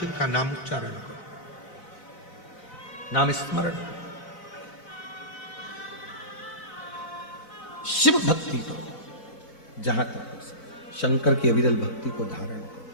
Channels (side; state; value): right; late; 3.9 ms